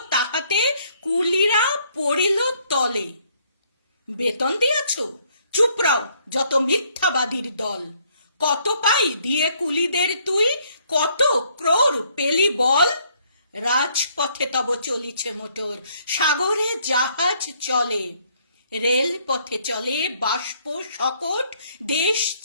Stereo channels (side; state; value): both; inverted; correlation -0.66